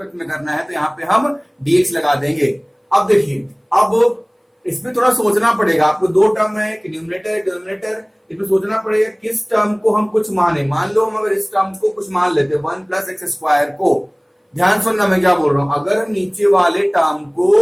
में करना है, तो यहाँ पे हम डीएक्स लगा देंगे। अब देखिए, अब इसमें थोड़ा सोचना पड़ेगा आपको। दो टर्म है, न्यूमरेटर डिनोमिनेटर, इसमें सोचना पड़ेगा किस टर्म को हम कुछ माने। मान लो हम अगर इस टर्म को कुछ मान लेते 1 प्लस एक्स स्क्वायर को, ध्यान सुनना मैं क्या बोल रहा हूं। अगर हम नीचे वाले टर्म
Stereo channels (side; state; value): both; identical; correlation 1.00